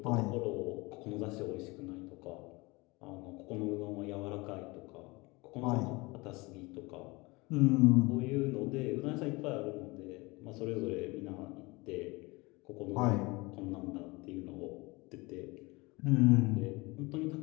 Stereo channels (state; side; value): quieter; right; 24.4 dB